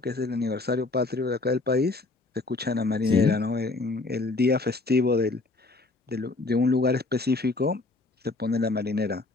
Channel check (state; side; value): quieter; right; 3.4 dB